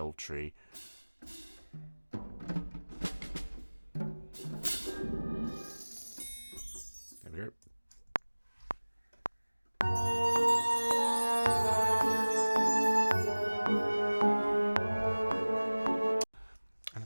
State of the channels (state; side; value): inverted; both; correlation -1.00